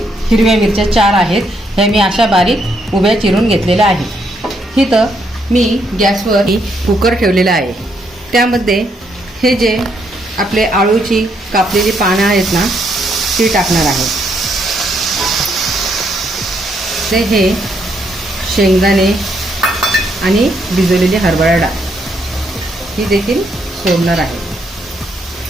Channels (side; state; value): both; normal; correlation 0.74